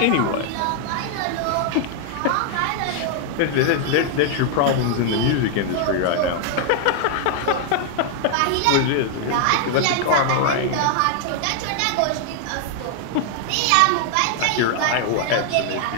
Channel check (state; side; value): different; both; correlation 0.00